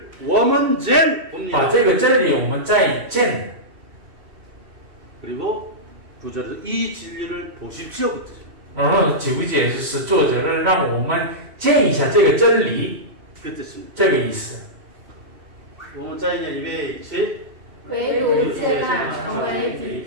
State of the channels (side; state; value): left; late; 3.1 ms